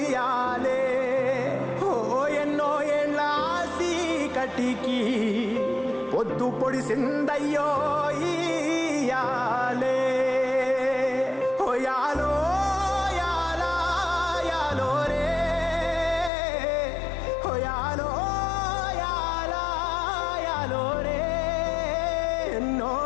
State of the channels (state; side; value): drops out; right; at 16.3 s